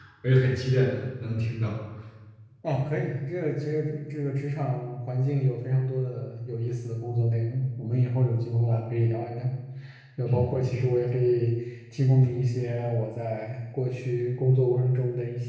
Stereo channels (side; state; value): both; identical; correlation 1.00